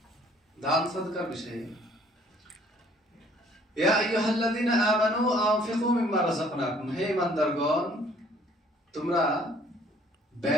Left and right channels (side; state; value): both; normal; correlation 0.58